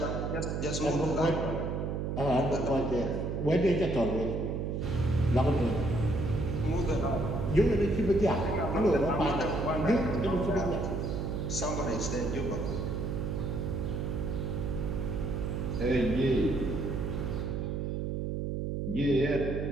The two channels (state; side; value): noise; right; hum, 2 dB below the sound